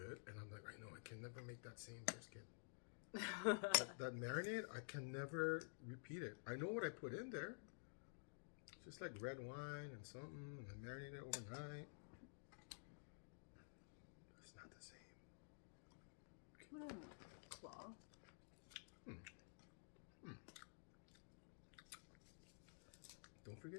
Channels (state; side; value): silent; right; digital silence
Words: and I'm like, "I know, I can never make that same brisket. that marinade, I can never repeat it. I know what I put in there, just like red wine and something, and I marinate it overnight. It's not the same." Claw. Don't